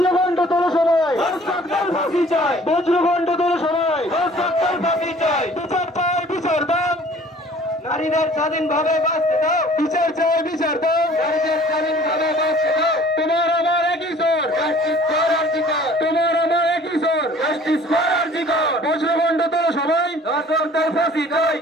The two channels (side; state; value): both; normal; correlation 0.51